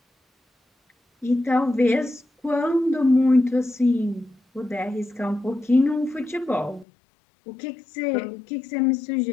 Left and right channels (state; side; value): drops out; right; at 6.9 s